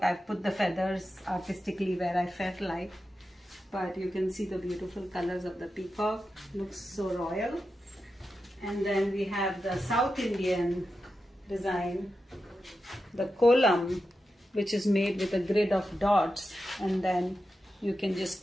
I've put the feathers artistically where I felt like. But you can see the beautiful colors of the peacock. Looks so royal. And then we have the South Indian design, the Kolam, which is made with a grid of dots, and then you can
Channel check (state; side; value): normal; both; correlation 0.90